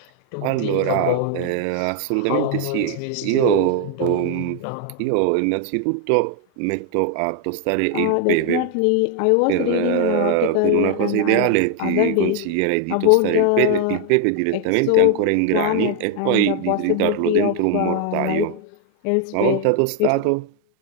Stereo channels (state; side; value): different; both; correlation 0.01